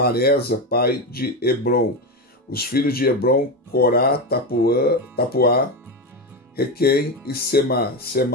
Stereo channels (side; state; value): both; normal; correlation 0.15